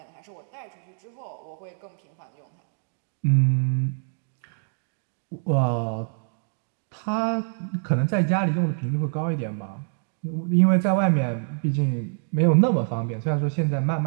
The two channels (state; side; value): silent; left; digital silence